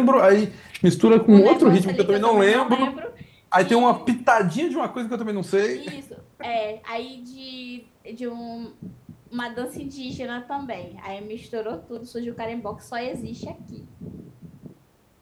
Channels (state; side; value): identical; both; correlation 1.00